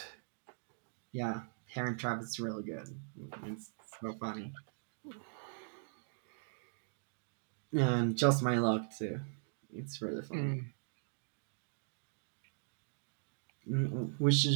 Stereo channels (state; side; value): silent; left; digital silence